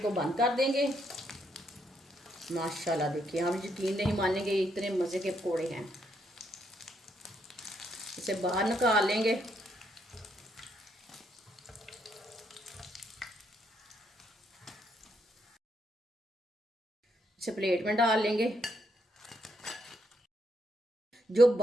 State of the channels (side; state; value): both; normal; correlation 0.76